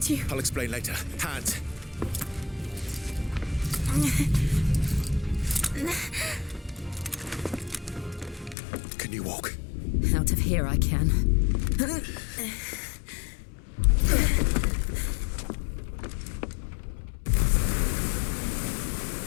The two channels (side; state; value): right; drops out; at 8.6 s